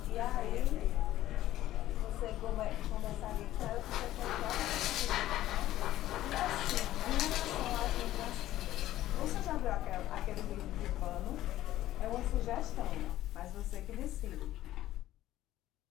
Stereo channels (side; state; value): right; quieter; 14.3 dB